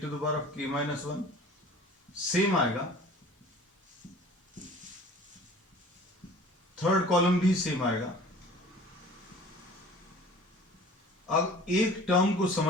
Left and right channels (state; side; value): normal; both; correlation 0.45